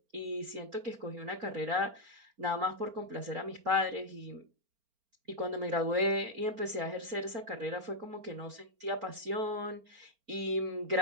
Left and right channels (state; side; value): late; left; 4.4 ms